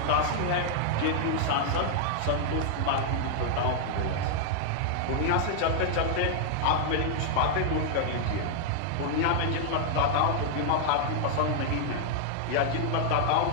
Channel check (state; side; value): different; both; correlation 0.00